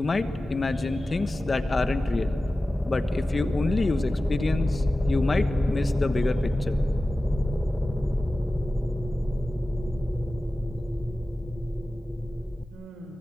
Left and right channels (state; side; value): normal; both; correlation 0.95